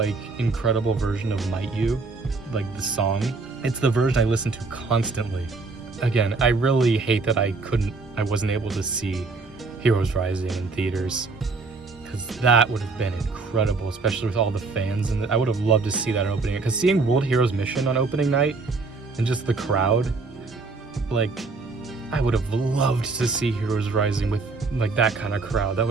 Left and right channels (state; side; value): quieter; left; 3.9 dB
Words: incredible version of Might You, like the song. It's the version I listen to constantly. Again, I really hate that I wasn't able to see Heroes Rising in theaters, because that would have been incredible, especially with all the fans. And I would have loved to see that opening. Because seeing World Heroes Mission on opening night and just the crowd, like, I would have loved to see Heroes Rising with like that kind of crowd. That